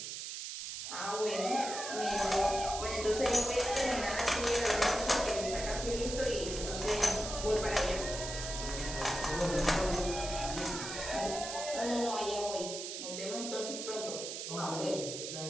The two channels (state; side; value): noise; right; hiss, 6 dB below the sound